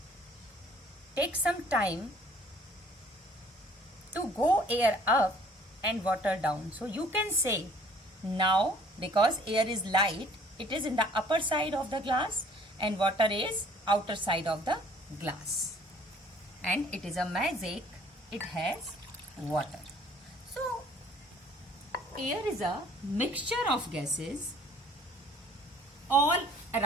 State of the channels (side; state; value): both; normal; correlation 0.56